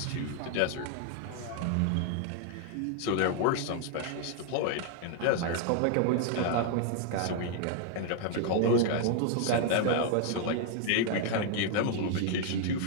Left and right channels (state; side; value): different; both; correlation 0.00